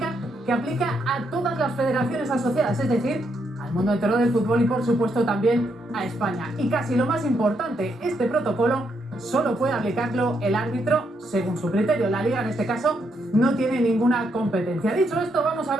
que aplica a todas las federaciones asociadas, es decir, al mundo entero del fútbol y por supuesto también a España. Y casi lo más importante, este protocolo solo puede aplicarlo el árbitro según su criterio. La liga en este caso no tiene ninguna competencia. Dicho esto, vamos a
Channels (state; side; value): normal; both; correlation 0.78